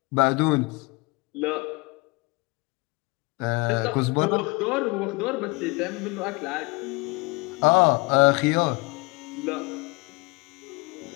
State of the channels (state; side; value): quieter; right; 27.0 dB